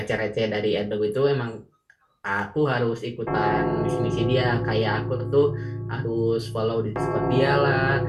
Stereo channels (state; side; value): identical; both; correlation 1.00